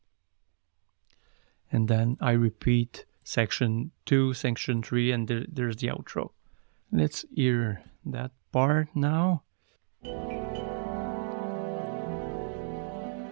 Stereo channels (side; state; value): left; silent; digital silence